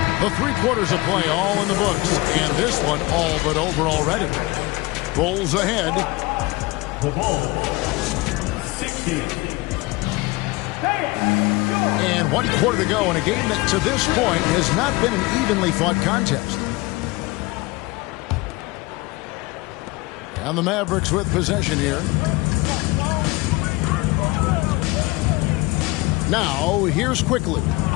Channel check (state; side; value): quieter; right; 22.5 dB